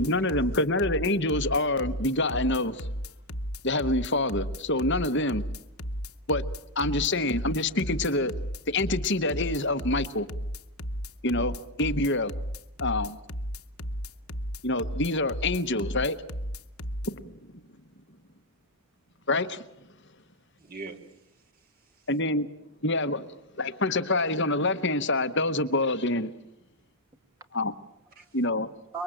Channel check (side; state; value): both; normal; correlation 0.03